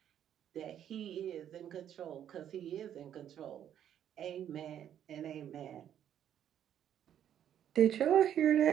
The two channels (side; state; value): left; quieter; 10.1 dB